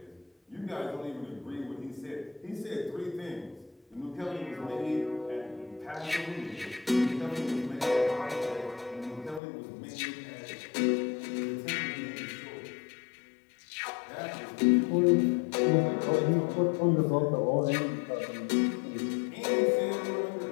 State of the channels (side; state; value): right; drops out; at 9.4 s